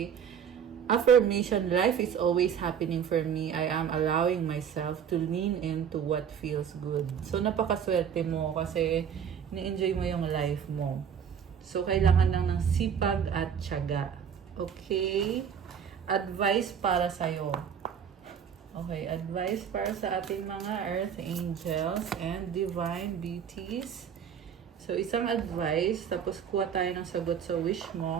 Affirmation, life is always happening for me. I am allowing myself to lean into what feels good. So napakaswerte mo kasi ni-enjoy mo yung life mo. So, kailangan lang ng sipag at tiyaga. Okay? Advice para sa'yo. Okay, advice para sa ating mga earth angels and divine deities. So, isang advice, tapos kuha tayo ng sagot sa wish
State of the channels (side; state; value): left; quieter; 7.9 dB